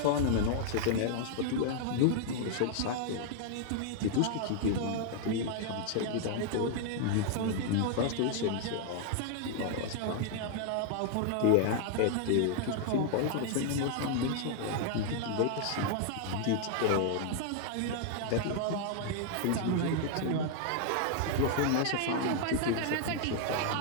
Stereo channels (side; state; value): both; different; correlation 0.00